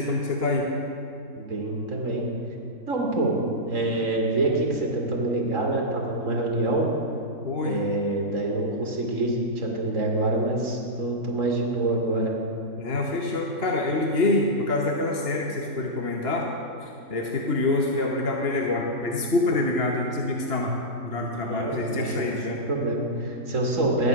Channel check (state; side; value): late; left; 2.9 ms